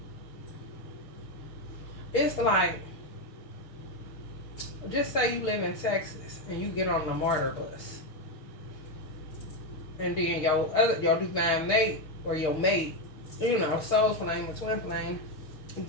it's like, just say you live in Texas and you get on the MARTA bus. And then your divine mate or your mate, you know, soul flame or twin flame,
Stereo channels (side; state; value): right; late; 6.4 ms